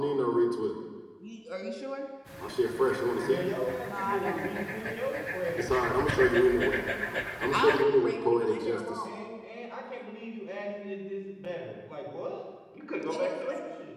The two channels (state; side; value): identical; both; correlation 1.00